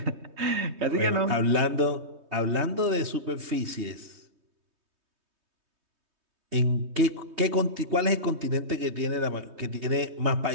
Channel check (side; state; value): left; late; 3.2 ms